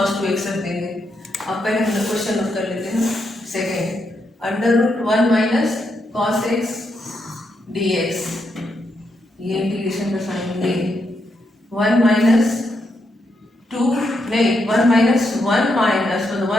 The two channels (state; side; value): normal; both; correlation 0.81